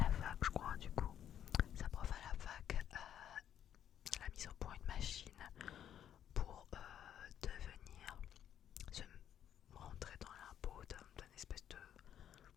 fac, je crois, du coup. Sa prof à la fac, elle a mis au point une machine pour devenir, se rentrer dans la peau d'un espèce de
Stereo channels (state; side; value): quieter; right; 10.0 dB